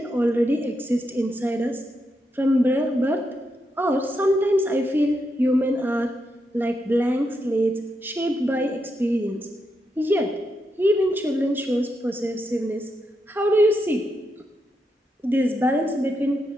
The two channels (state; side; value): normal; both; correlation 0.83